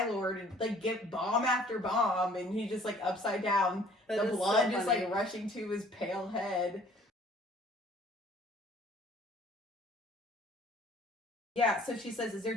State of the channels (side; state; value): both; normal; correlation 0.55